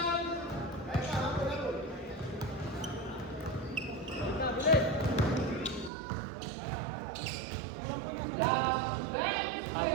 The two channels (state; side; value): drops out; left; at 5.9 s